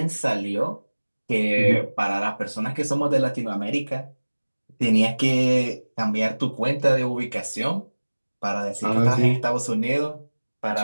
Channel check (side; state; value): both; inverted; correlation -1.00